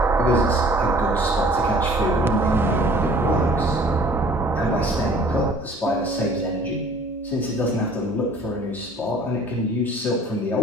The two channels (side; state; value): both; normal; correlation 0.52